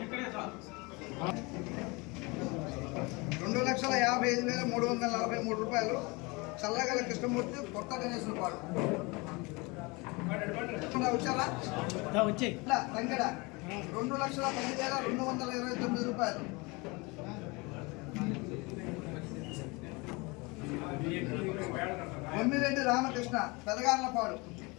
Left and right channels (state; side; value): quieter; right; 26.4 dB